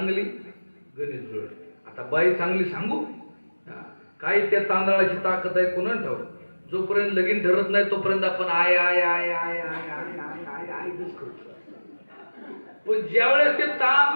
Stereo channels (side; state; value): both; inverted; correlation -1.00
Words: गणित जुळत. आता बाई चांगली सांगू काय, त्या तांदळाची ताकद आहे कोणा ठाऊ. जोपर्यंत लगीन ठरत नाही तोपर्यंत आपण I I I I I I I I करतो. पण ज्यावेळेस ते